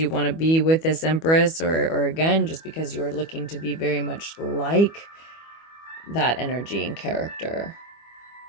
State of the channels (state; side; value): late; right; 25 ms